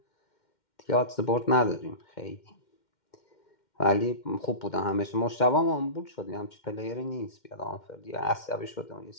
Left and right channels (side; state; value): right; late; 2.1 ms